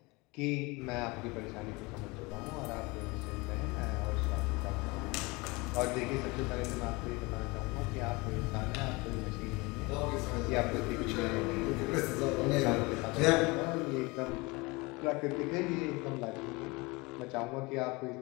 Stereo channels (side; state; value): right; quieter; 25.2 dB